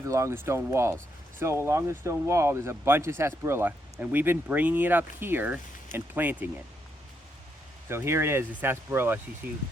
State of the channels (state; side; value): normal; both; correlation 0.78